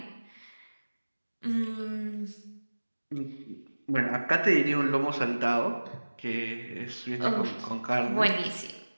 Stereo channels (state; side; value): inverted; both; correlation -1.00